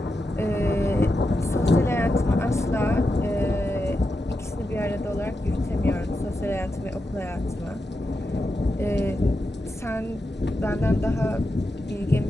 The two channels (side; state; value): both; normal; correlation 0.88